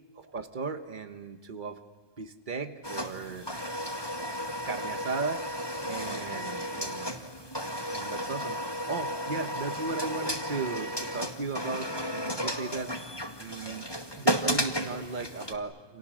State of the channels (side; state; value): right; late; 1.2 ms